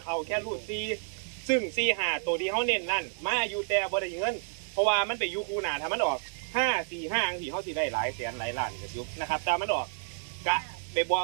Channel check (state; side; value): silent; left; digital silence